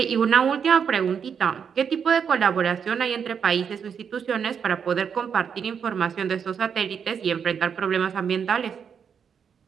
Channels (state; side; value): quieter; left; 7.1 dB